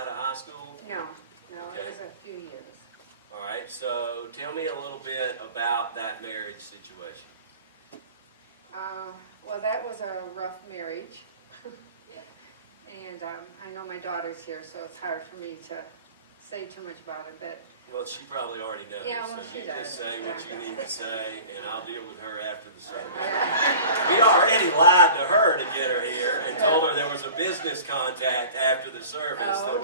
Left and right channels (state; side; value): inverted; both; correlation -0.41